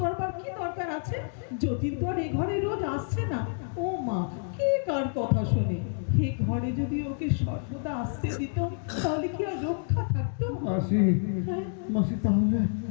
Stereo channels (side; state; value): right; silent; 56 dB below the other